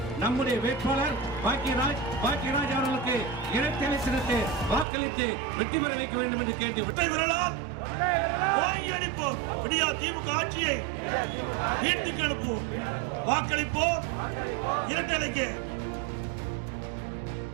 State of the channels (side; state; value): left; drops out; at 4.9 s